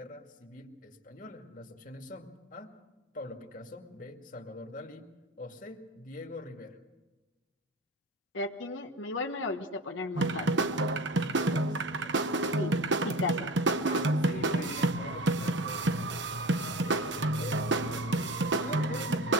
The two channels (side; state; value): both; normal; correlation 0.34